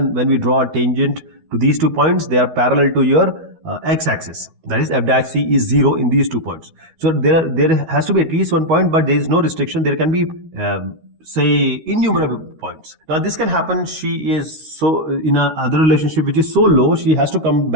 when we draw a tangent to these 2 points, they are parallel to your x-axis. That is f dash c is 0 in these 2 points. So there has to be at least 1 point, but there is no restriction. There can be say innumerable points. Now this can happen. She is so in a other relationship which is so low, she has to come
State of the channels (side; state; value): left; late; 13 ms